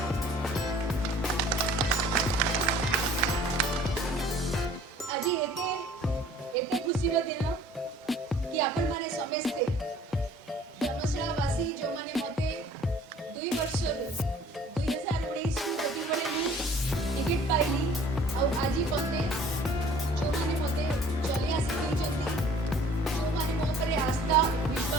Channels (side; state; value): both; normal; correlation 0.52